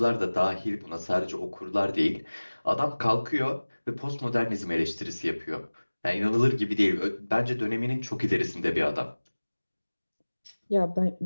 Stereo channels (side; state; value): both; inverted; correlation -1.00